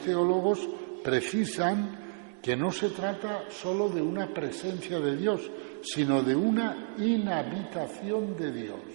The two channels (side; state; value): left; silent; 57 dB below the other